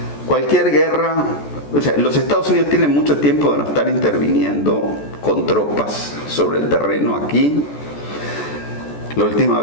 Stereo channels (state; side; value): late; right; 14 ms